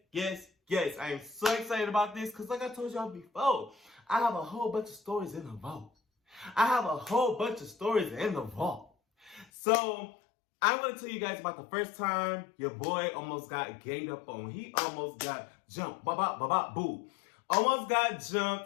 I am so excited about this because, like I told y'all before, I have a whole bunch of stories in the vault. So I'm going to tell you guys about the first time your boy almost got ganged up on. He almost got jumped. Boo. Almost got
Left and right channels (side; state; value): right; drops out; at 9.5 s